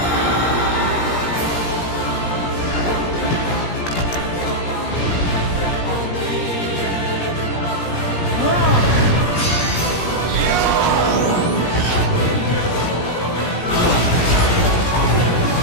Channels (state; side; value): late; right; 17 ms